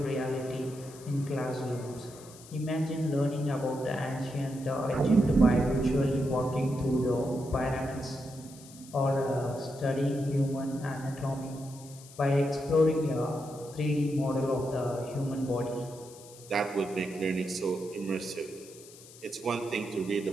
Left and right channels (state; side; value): noise; left; hiss, 20 dB below the sound